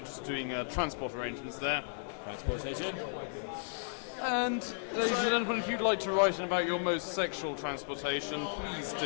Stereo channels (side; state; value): right; silent; digital silence